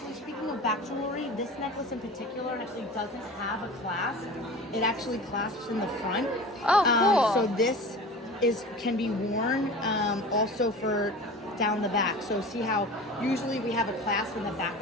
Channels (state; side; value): normal; both; correlation 0.36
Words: speaking of back jewelry, this necklace in particular actually doesn't have a clasp. It actually clasps in the front. Oh, cool. So this can be worn also for down the back. So see how usually we have a clasp in the back